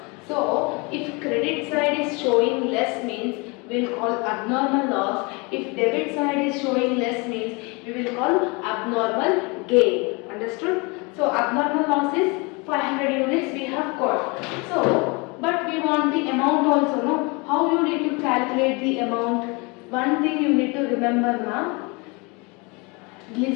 So if credit side is showing less means we will call abnormal loss. If debit side is showing less means we will call abnormal gain. Understood? So abnormal loss is 500 units we have got. So but we want the amount also, no? How you need to calculate the amount? One thing you need to remember now.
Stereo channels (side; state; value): right; quieter; 28.7 dB